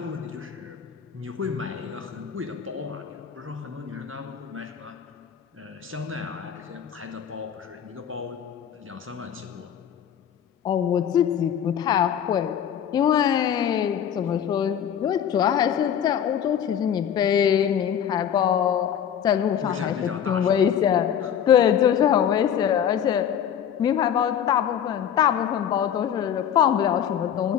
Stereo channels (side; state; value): right; quieter; 9.0 dB